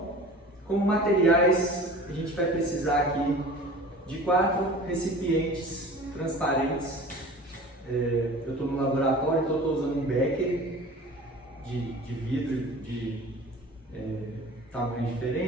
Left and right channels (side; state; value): both; normal; correlation 0.41